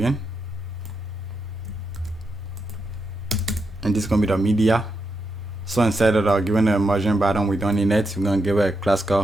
and this is gonna be the media. So instead of giving a margin button, we don't need it. We're gonna give it a class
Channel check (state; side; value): normal; both; correlation 0.84